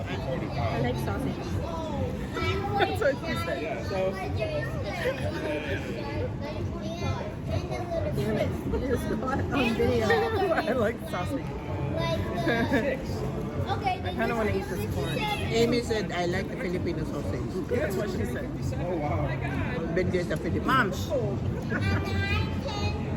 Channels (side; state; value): both; identical; correlation 1.00